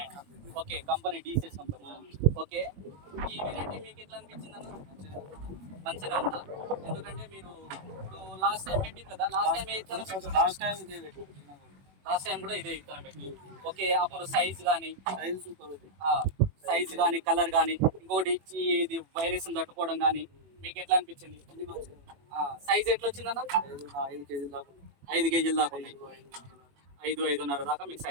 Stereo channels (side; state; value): left; late; 21 ms